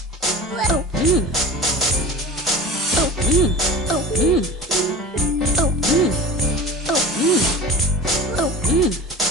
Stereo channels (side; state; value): both; normal; correlation 0.36